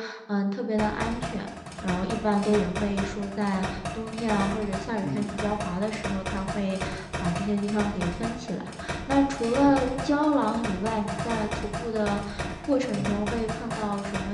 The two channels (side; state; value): both; identical; correlation 1.00